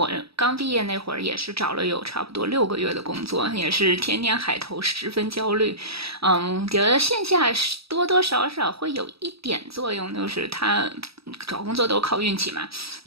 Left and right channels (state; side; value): late; left; 0.77 ms